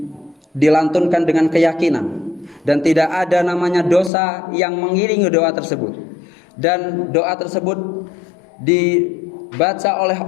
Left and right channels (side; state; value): right; drops out; at 4.1 s